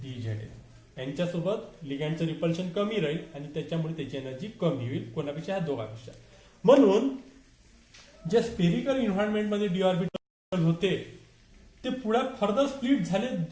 dzx. यांच्यासोबत लिगॅंडचं रिपल्शन कमी राहील आणि त्याच्यामुळे त्याची एनर्जी कमी होईल. कोणापेक्षा, ह्या दोघांपेक्षा. म्हणून जे स्पेरिकल एन्व्हायरमेंट मध्ये डी ऑर्बिटल होते ते पुढे फर्दर स्प्लिट झाले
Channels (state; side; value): identical; both; correlation 1.00